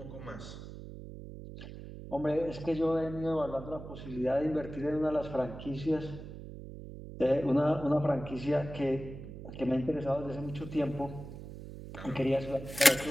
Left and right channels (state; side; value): noise; right; hum, 12 dB below the sound